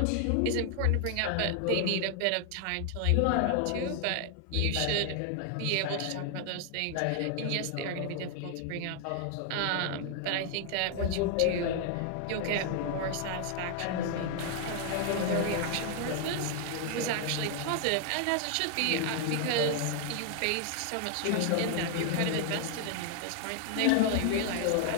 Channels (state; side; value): different; both; correlation 0.00